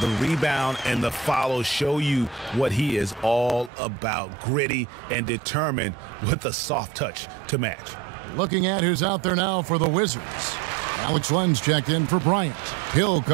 rebound and the follow show you what he is all about. Gritty and determined with a soft touch to match. Looking at who's out there now for the Wizards. Alex Len's checked in for Bryant. Hill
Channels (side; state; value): left; drops out; at 3.7 s